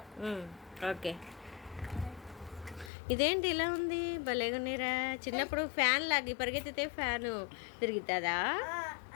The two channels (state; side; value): drops out; right; at 2.9 s